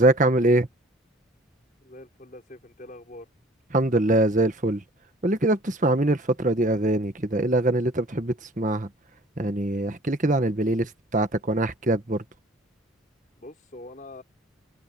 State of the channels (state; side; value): normal; both; correlation 0.50